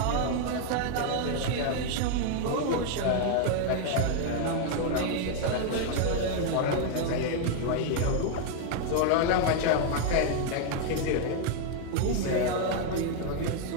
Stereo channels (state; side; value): different; both; correlation 0.00